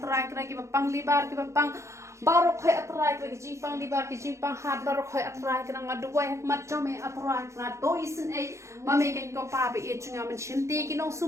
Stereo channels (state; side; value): late; left; 0.14 ms